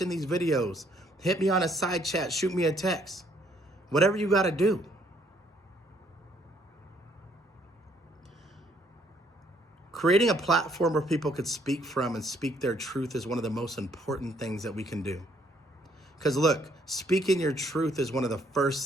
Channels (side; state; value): both; normal; correlation 0.66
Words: these videos. Hit me on a side chat. Shoot me a text. Whatever you got to do. Creating a platform where people could speak from and speak their truth is one of the most important things that we can do. Because look, speaking your truth is one of the